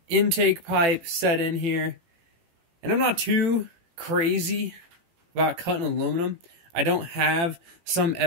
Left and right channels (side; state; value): left; late; 18 ms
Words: intake pipe set in here. And I'm not too crazy about cutting aluminum. I don't have some